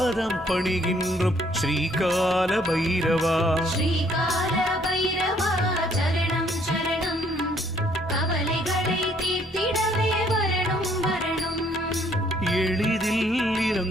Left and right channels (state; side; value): normal; both; correlation 0.64